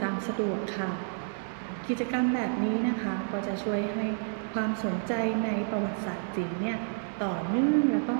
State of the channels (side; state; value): left; silent; digital silence